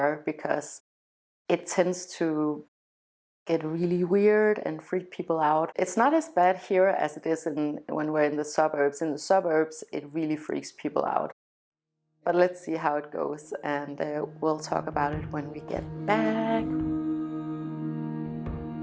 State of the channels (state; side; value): identical; both; correlation 1.00